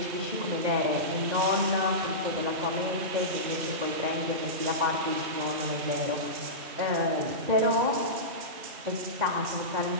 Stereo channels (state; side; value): late; left; 3.1 ms